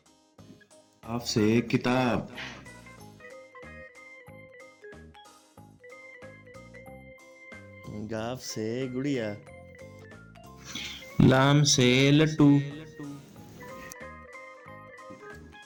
काफ से किताब, गाफ से गुड़िया, लाम से लट्टू,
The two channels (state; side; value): identical; both; correlation 1.00